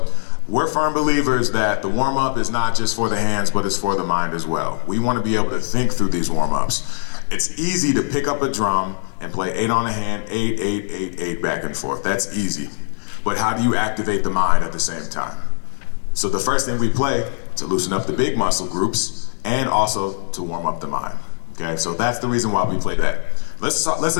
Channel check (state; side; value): silent; right; 65 dB below the other